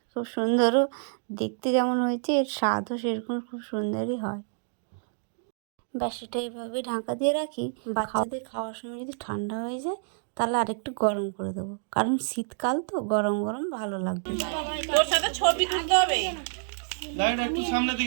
খুব সুন্দরও দেখতে যেমন হয়েছে, এর স্বাদও সেরকম খুব সুন্দরই হয়। ব্যাস এটা এইভাবে ঢাকা দিয়ে রাখি। বাচ্চাদের খাওয়ার সময় যদি ঠান্ডা হয়ে যায়, তাহলে আরেকটু গরম করে দেবো, কারণ শীতকাল তো গরম গরম ভালো লাগবে। তোর সাথে ছবি তুলতে হবে। লাইট একটু সামনে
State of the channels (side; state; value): left; silent; digital silence